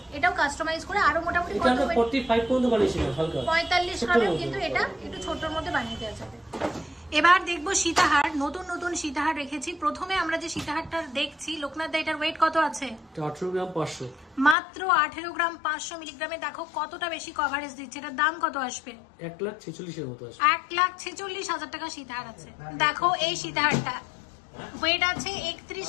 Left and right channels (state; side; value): drops out; right; at 14.6 s